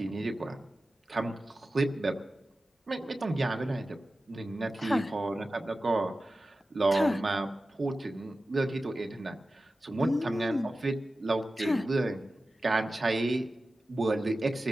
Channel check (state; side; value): normal; both; correlation 0.95